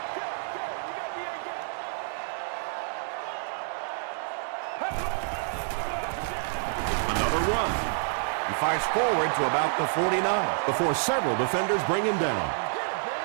Another run. He fights forward to about the 49 before several defenders bring him down.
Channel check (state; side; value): silent; left; digital silence